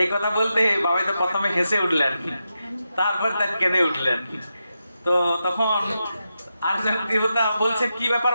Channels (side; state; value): both; inverted; correlation -0.88